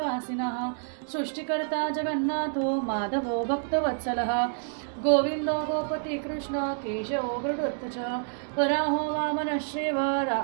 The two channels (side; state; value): left; silent; digital silence